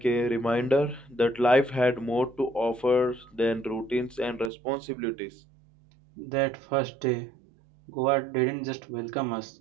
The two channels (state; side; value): drops out; left; at 4.5 s